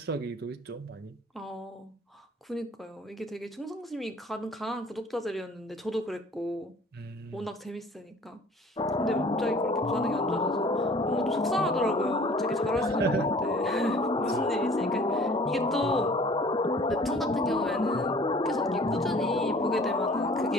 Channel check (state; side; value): normal; both; correlation 0.50